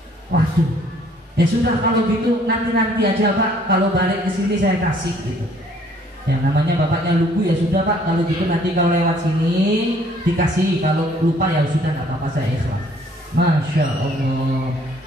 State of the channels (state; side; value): normal; both; correlation 0.60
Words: Waduh. Ya sudah kalau gitu nanti aja Pak, kalau balik ke sini saya kasih gitu. Ya namanya bapaknya lugu, ya sudah Pak, kalau gitu nanti kalau lewat sini dikasih, kalau lupa ya sudah nggak apa-apa, saya ikhlas. Masya Allah,